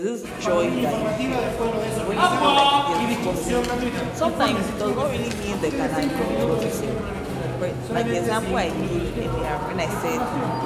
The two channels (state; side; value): identical; both; correlation 1.00